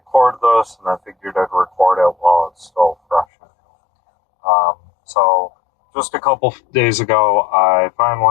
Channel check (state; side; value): drops out; right; at 3.2 s